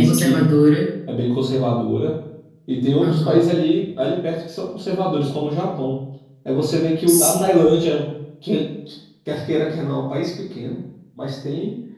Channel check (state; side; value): identical; both; correlation 1.00